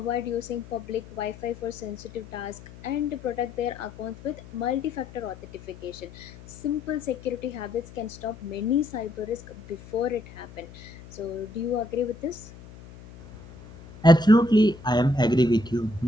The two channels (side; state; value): left; noise; hum, 18 dB below the sound